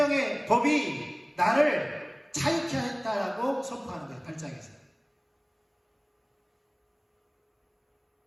법이 나를 자유케 했다라고 선포하는 거예요. 8장에서.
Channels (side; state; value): both; identical; correlation 1.00